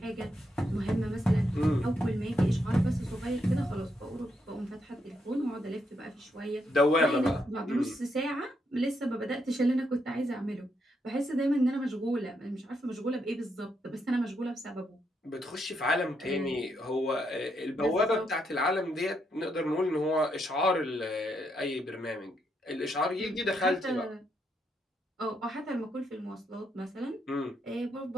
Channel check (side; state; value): both; normal; correlation 0.79